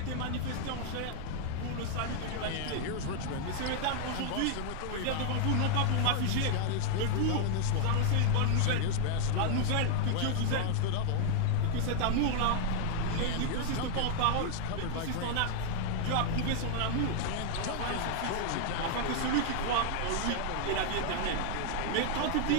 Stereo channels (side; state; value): both; different; correlation 0.00